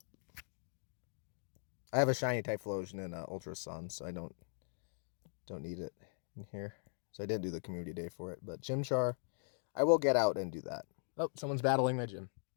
I have a shiny Typhlosion in Ultra Sun, so I don't need it in here. So I did do the community day for it, but Chimchar, I will get out and do that. Oh, someone's battling my gym.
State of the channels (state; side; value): silent; right; digital silence